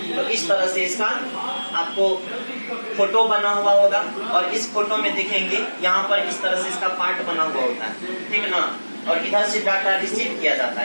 तो इस तरह से इसका आपको फोटो बना हुआ होगा, और इस फोटो में देखेंगे यहाँ पर इस तरह से इसका पार्ट बना हुआ होता है, ठीक ना। और इधर से डाटा रिसीव किया जाता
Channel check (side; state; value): both; inverted; correlation -1.00